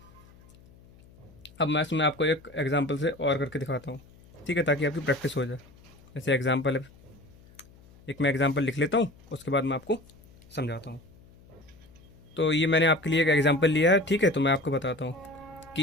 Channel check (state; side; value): noise; left; hum, 25 dB below the sound